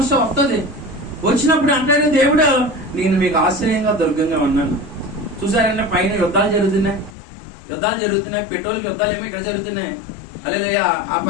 వస్తుంది. వచ్చినప్పుడు అంటాడు దేవుడు, నేను మీకు ఆశ్రయంగా దుర్గంగా ఉన్నాను. చూసారంటే పైన యుద్ధాలు జరుగుతున్నాయి, పెట్రోల్కి యుద్ధాలు ఏమో ఇక్కడ జరుగుతున్నాయి. హల్లెలూయా. ఆ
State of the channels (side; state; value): right; drops out; at 7.2 s